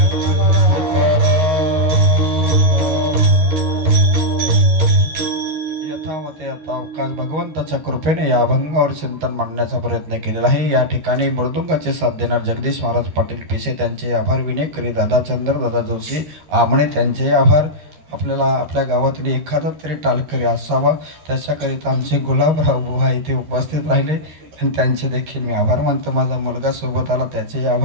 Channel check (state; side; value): late; left; 13 ms